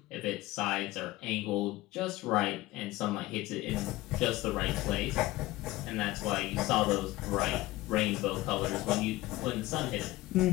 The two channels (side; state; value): right; quieter; 18.1 dB